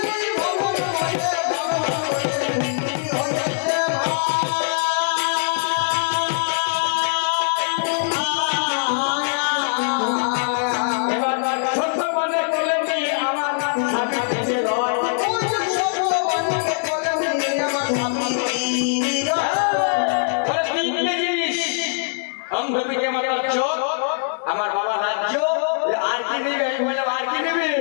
আমার বাবা রাজ্য আর কি নেবে, আর কি নেবে,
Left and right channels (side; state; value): right; silent; digital silence